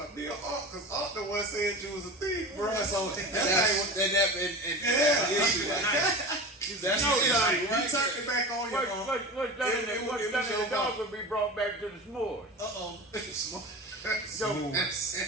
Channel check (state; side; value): normal; both; correlation 0.31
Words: about? Bill Ark, because Ark the one said you was a thief, bro. So That's that's and yeah. issue. That's No, the issue, He right? turned it back on you. What's done in the dog will be brought back to the s'mores. Uh-oh. So